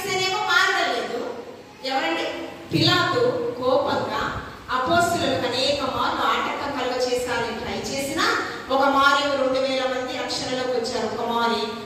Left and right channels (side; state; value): both; identical; correlation 1.00